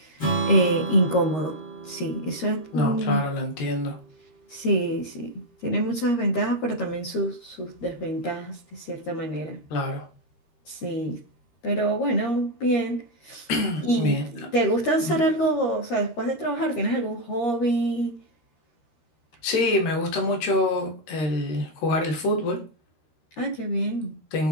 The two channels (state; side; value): late; right; 13 ms